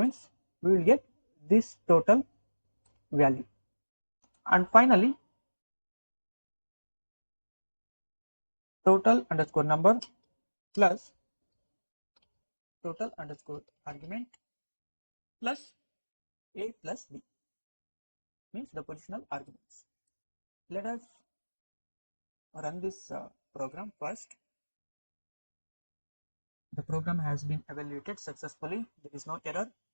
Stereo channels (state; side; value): inverted; both; correlation -1.00